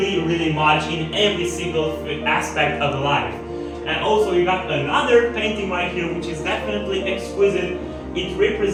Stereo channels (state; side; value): identical; both; correlation 1.00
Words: much in every single aspect of life. And also you got another painting right here which is definitely exquisite. It